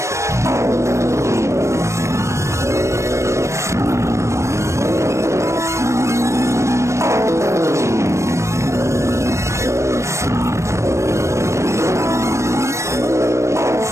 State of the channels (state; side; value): late; left; 0.14 ms